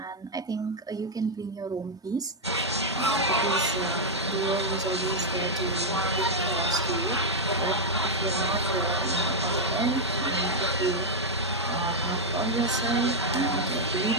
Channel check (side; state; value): both; normal; correlation 0.00